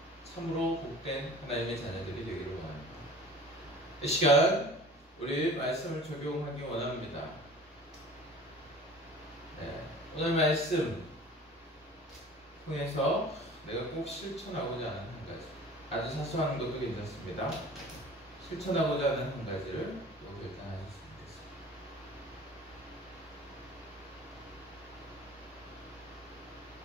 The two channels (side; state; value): both; normal; correlation 0.44